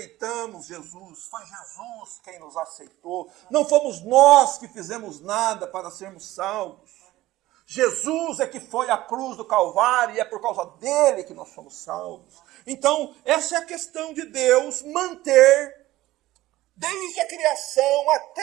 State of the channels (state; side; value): quieter; left; 16.6 dB